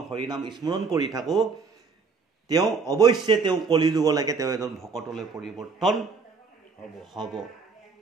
হৰি নাম স্মৰণ কৰি থাকোঁ তেওঁ অৱশ্যে তেওঁ কলি যুগলৈকে তেওঁ এজন ভকতলৈ পৰিৱৰ্তন হ'ব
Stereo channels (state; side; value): quieter; left; 5.0 dB